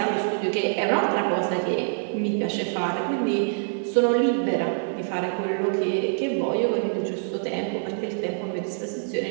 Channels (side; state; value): left; silent; digital silence